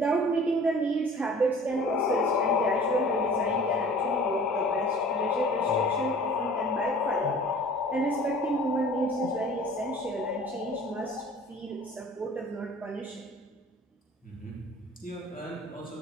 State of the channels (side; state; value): both; normal; correlation 0.47